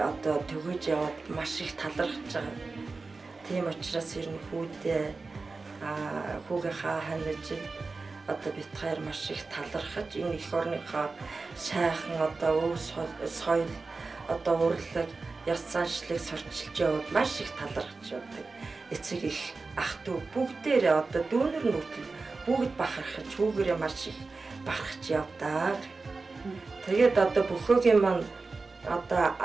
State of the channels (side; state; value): left; quieter; 3.9 dB